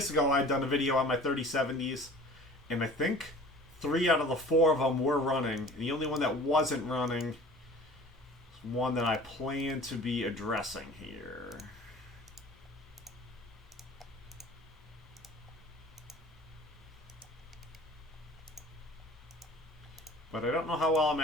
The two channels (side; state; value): both; normal; correlation 0.45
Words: ago, I'd done a video on my 3070s, and I think 3 out of the 4 of them were running. And the only one that wasn't running is one that I plan to be addressing here. But I don't know how well I'm